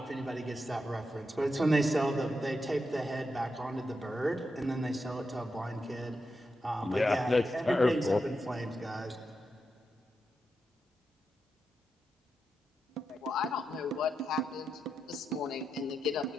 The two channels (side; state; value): both; normal; correlation 0.86